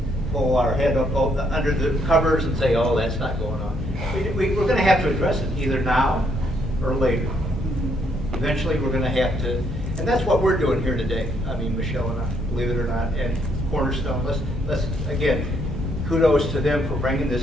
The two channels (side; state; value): both; normal; correlation 0.71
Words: pull our head up under the covers and say, oh, that's not going on. We're going to have to address it either now or later. Eventually, we're going to have to, and that's what we're doing here today. I mean, Michelle and I, believe it or not, and Cornerstone. Let's again, kudos to them for bringing